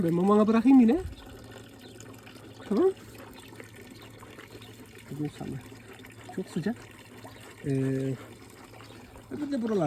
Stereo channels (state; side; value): identical; both; correlation 1.00